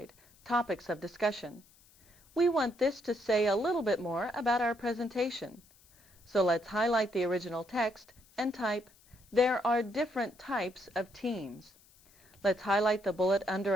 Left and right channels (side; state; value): left; noise; hiss, 29 dB below the sound